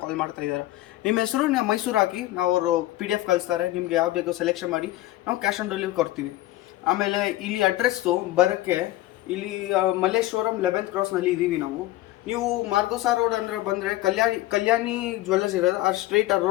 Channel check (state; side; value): quieter; right; 16.5 dB